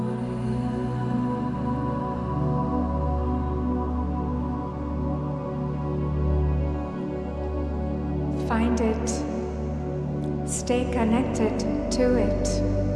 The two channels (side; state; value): both; identical; correlation 1.00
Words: Find it. Stay connected to it.